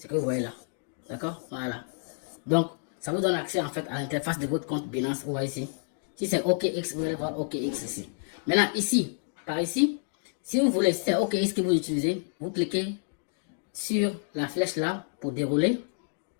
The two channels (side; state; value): right; silent; 59 dB below the other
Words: que vous voyez là. D'accord? Voilà. Donc, ça vous donne accès en fait à l'interface de votre compte Binance. Vous voyez ici. Si c'est OKX, vous allez voir OKX ici. Maintenant, ici, par ici, si vous voulez, si c'est OKX que vous utilisez, vous cliquez sur la flèche là pour dérouler.